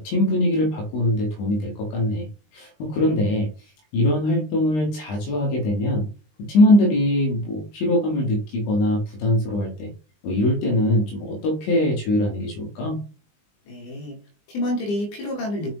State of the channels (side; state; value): right; late; 20 ms